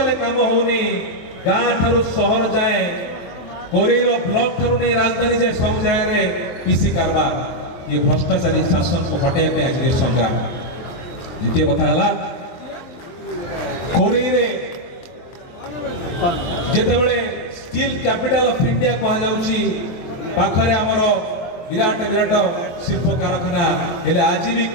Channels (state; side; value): late; right; 23 ms